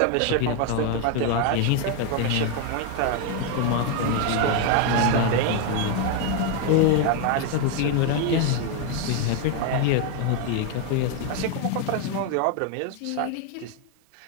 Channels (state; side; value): different; both; correlation 0.01